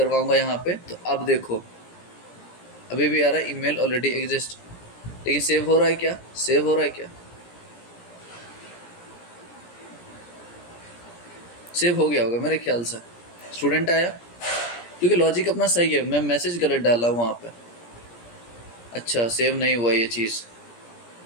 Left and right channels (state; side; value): late; right; 17 ms